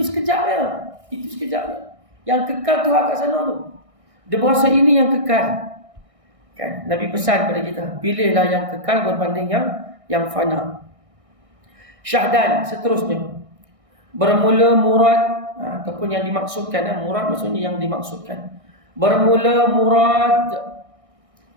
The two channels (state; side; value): late; left; 1.6 ms